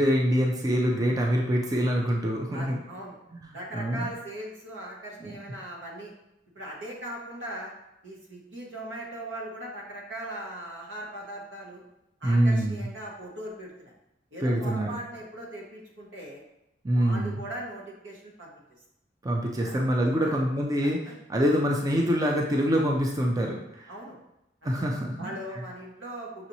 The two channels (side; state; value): both; normal; correlation 0.79